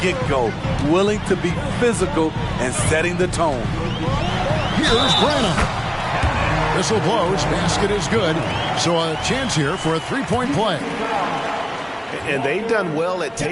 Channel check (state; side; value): identical; both; correlation 1.00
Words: willing to be physical and setting the tone. Here's Branham. Whistle blows, basket is good. So a chance here for a three-point play. And they've done well at